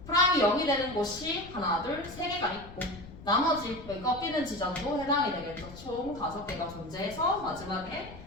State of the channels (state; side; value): noise; left; rumble, 16 dB below the sound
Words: 프라임이 0이 되는 곳이 하나 둘 3개가 있고 나머지 여기 꺾이는 지점도 해당이 되겠죠. 총 5개가 존재해서 마지막에